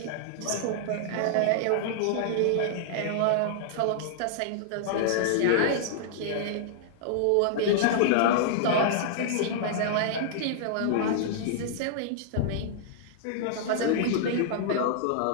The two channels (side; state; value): both; different; correlation -0.01